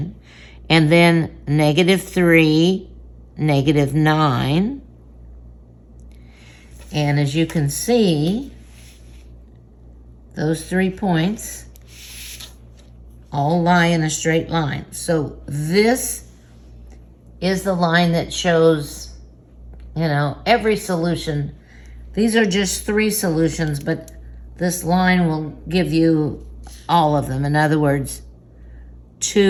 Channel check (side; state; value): both; identical; correlation 1.00